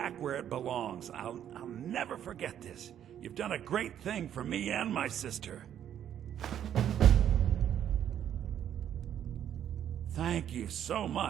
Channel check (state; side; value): quieter; left; 10.0 dB